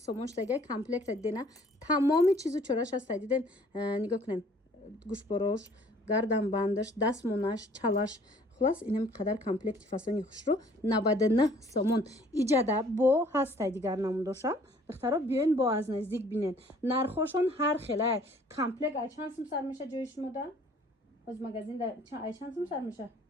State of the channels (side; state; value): both; normal; correlation 0.56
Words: шдаgai комплект дидена тамоми чизу чораш аст диден нигоҳ кунен гӯшборош гарданбандаш дастмонаш чалаш خلاص اینم قدر کامپلکت فاسونی خوش رو 99 سومون ایجاده با هسته دیگر نموداشم دخترها بیاین با از نزدیک بینین نرخوشون هر خیلی کامپلکت ای چند سم سر میشه جایش مدن از مگزین ای چند سم سر میشه